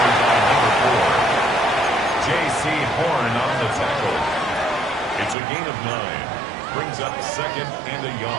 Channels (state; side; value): drops out; left; at 5.4 s